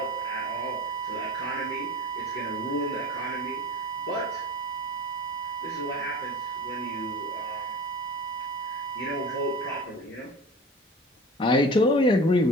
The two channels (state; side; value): normal; both; correlation 0.37